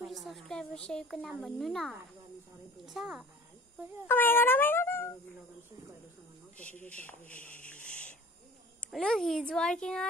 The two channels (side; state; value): both; normal; correlation 0.45